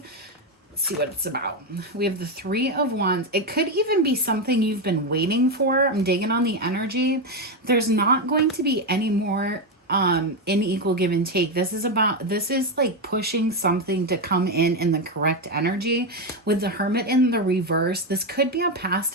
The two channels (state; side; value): normal; both; correlation 0.09